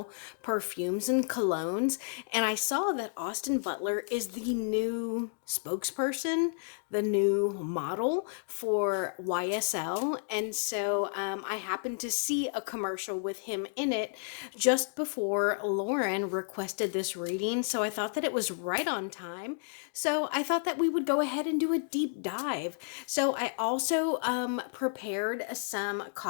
perfumes and colognes, and I saw that Austin Butler is the new spokesperson, the new model for YSL. And so I happened to see a commercial with him in it just before Lauren requested this reading. So I thought that it was right on time. So I thought that we would go ahead and do a deep dive. So I also prepared some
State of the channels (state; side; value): silent; right; digital silence